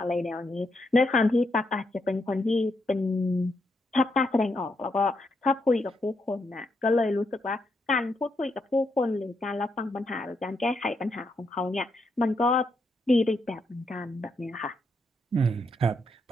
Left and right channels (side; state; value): both; normal; correlation 0.80